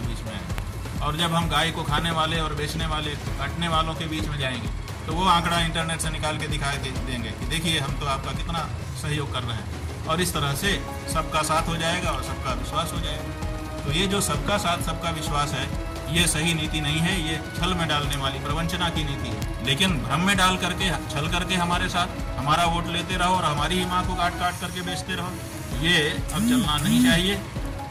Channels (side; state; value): both; identical; correlation 1.00